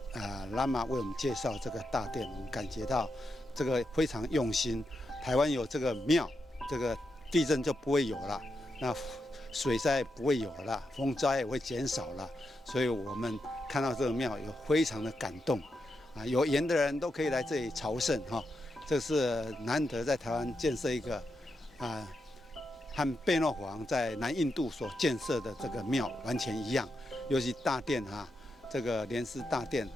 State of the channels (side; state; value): both; normal; correlation 0.85